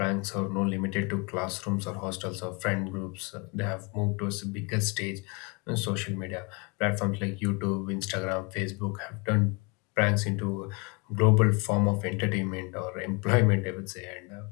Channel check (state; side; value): quieter; right; 30.3 dB